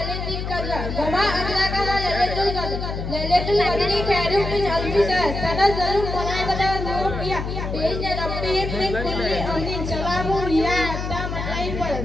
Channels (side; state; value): left; noise; hum, 4 dB below the sound